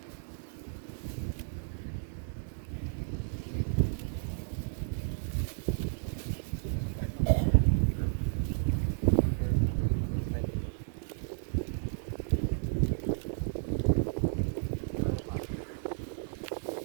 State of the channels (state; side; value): silent; left; digital silence